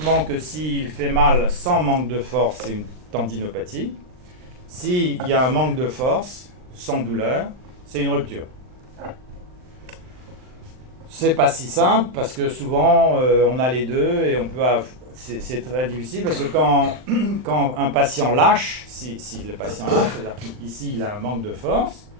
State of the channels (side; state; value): left; late; 39 ms